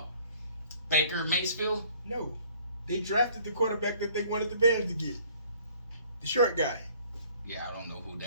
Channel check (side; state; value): both; inverted; correlation -0.58